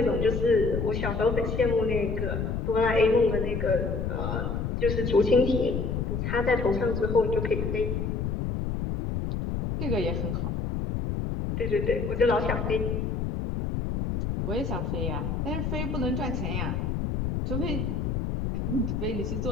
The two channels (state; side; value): noise; left; rumble, 1 dB below the sound